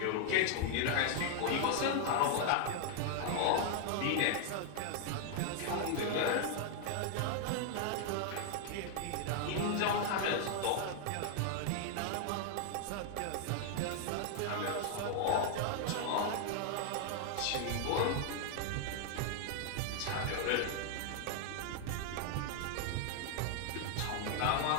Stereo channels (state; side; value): different; both; correlation 0.00